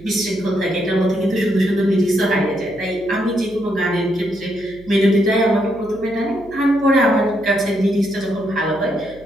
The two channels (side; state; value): right; noise; hum, 23 dB below the sound